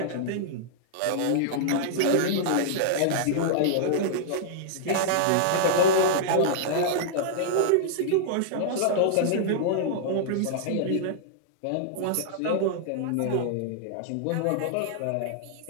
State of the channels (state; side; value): different; both; correlation -0.02